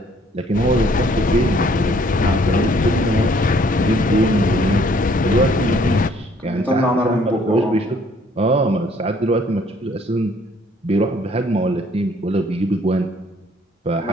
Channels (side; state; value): both; normal; correlation 0.61